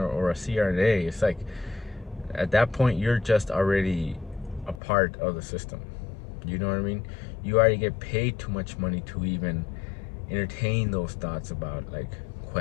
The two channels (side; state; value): right; drops out; at 4.8 s